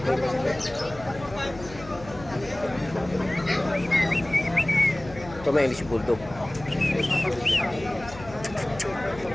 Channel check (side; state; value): left; noise; hum, 16 dB below the sound